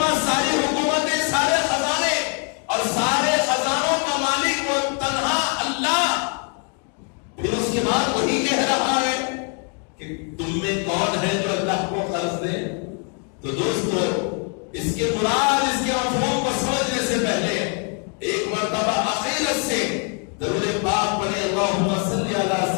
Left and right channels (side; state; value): right; quieter; 39.9 dB